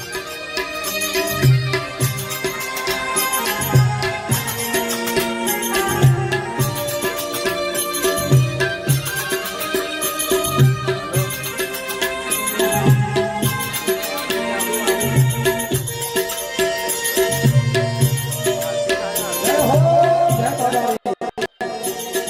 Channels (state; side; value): identical; both; correlation 1.00